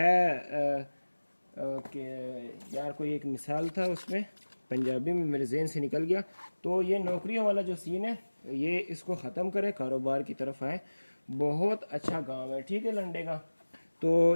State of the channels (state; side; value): inverted; both; correlation -1.00